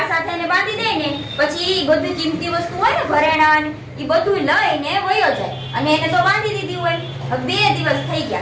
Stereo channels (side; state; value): both; identical; correlation 1.00